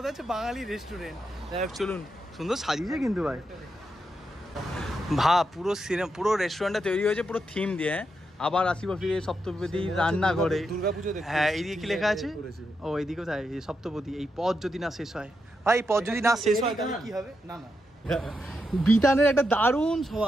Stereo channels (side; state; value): both; normal; correlation 0.84